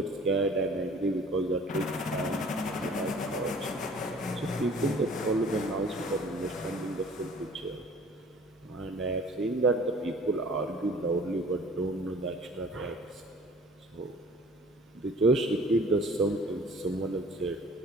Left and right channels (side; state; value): both; normal; correlation 0.50